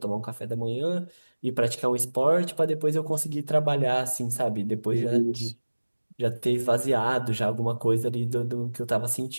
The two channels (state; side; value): inverted; both; correlation -1.00